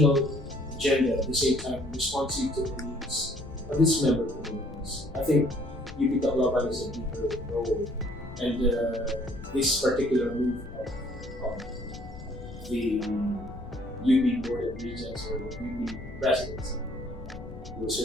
agenda, at the same time responsive to the needs of its member communities. I think UP Tacloban is a deeper role, and this particular move of the UP Board of Regents or the UP Presidency will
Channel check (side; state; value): left; noise; rumble, 14 dB below the sound